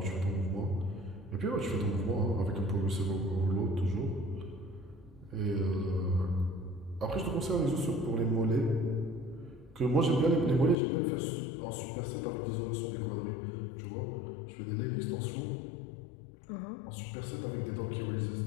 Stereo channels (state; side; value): drops out; right; at 10.8 s